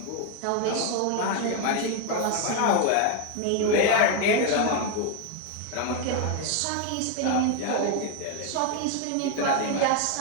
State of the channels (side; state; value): both; different; correlation 0.01